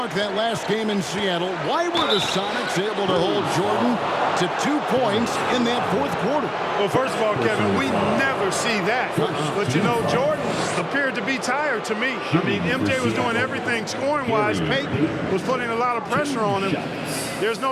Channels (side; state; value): both; identical; correlation 1.00